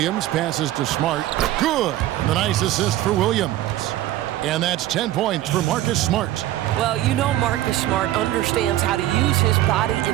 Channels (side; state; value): left; quieter; 14.4 dB